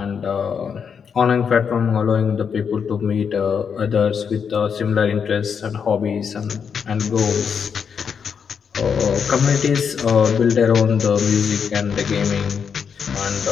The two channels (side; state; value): right; quieter; 6.8 dB